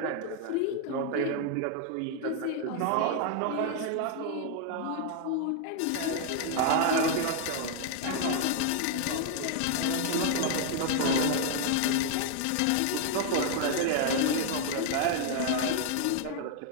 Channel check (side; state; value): both; different; correlation 0.00